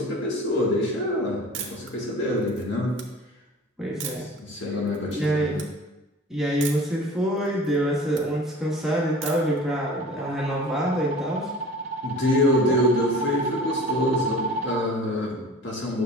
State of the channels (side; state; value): both; normal; correlation 0.41